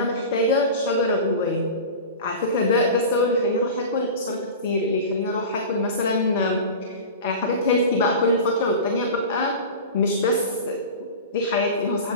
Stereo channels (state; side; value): inverted; both; correlation -0.31